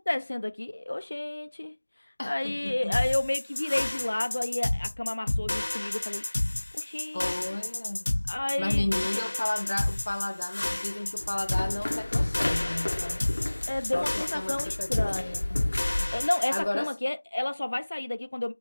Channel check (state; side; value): inverted; both; correlation -1.00